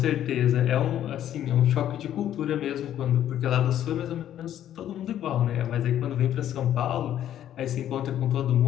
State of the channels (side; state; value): right; quieter; 11.2 dB